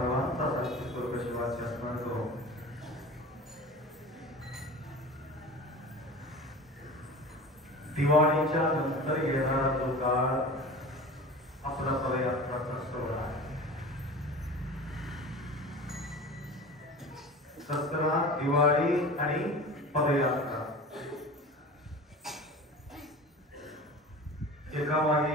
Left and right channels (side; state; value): both; normal; correlation 0.36